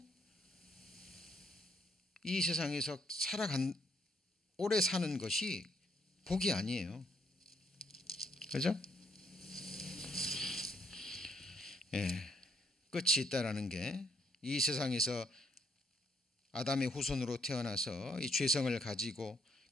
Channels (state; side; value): normal; both; correlation 0.71